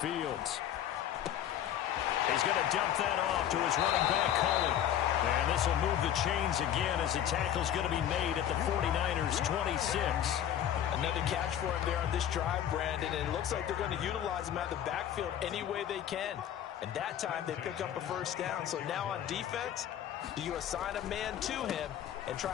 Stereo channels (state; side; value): quieter; right; 10.5 dB